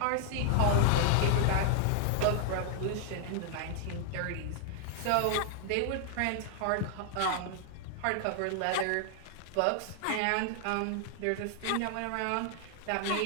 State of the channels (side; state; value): both; different; correlation 0.00